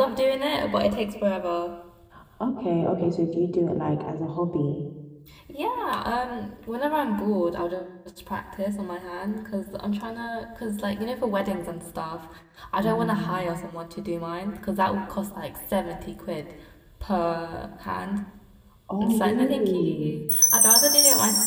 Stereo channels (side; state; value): both; identical; correlation 1.00